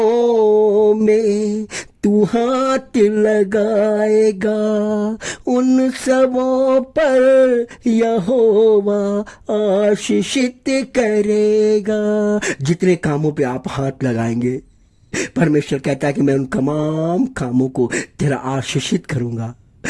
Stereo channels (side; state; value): both; identical; correlation 1.00